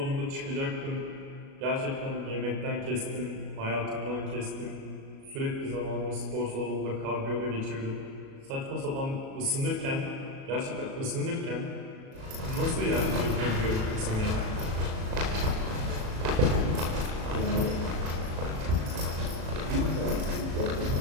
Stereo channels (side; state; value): left; late; 37 ms